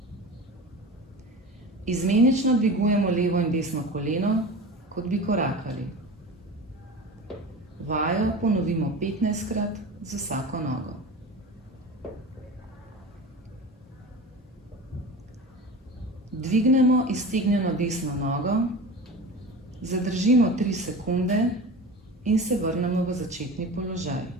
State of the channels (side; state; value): both; normal; correlation 0.32